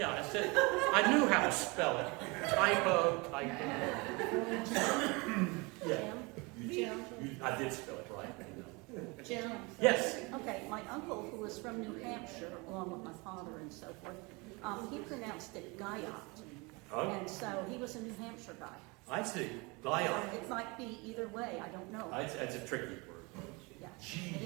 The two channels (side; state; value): left; quieter; 27.2 dB